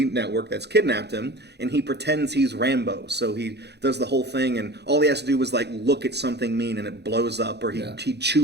network that's kidnapped him, and he pretends he's Rambo. So he does the whole thing, and all he has to do is like look at something mean, and it blows up, or he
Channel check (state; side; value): late; left; 0.49 ms